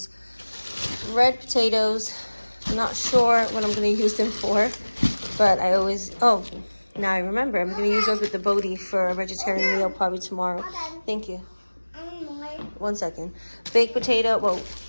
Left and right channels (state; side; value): inverted; both; correlation -1.00